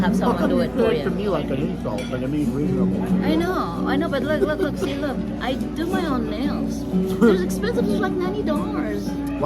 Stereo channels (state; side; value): identical; both; correlation 1.00